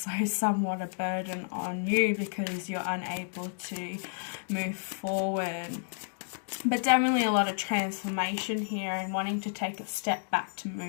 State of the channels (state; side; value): silent; right; digital silence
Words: somewhat a burden on you because you're unable to move forward. But definitely a lot of transformation here, and wanting to take a step back to